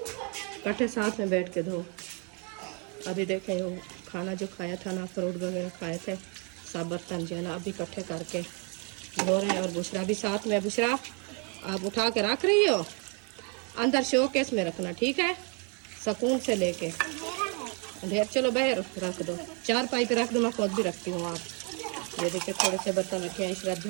इकट्ठे साथ में बैठ के धो। अभी देखें वो खाना जो खाया था ना, फ्रूट वगैरह खाए थे, सब बर्तन जो है ना अभी इकट्ठे करके धो रहे हैं। और बुशरा भी साथ में। बुशरा आप उठा के रख रही हो, अंदर शोकेस में रखना, ठीक है, सुकून से लेके। ढेर चलो बाहर रख दो, 4 पाइप रख दो, मैं खुद भी रखती हूँ। आप ये देखिए थोड़े से बर्तन रखे हैं, इशरत जो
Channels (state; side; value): quieter; left; 36.4 dB